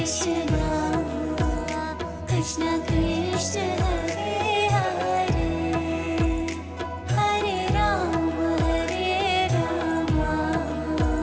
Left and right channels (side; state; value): both; identical; correlation 1.00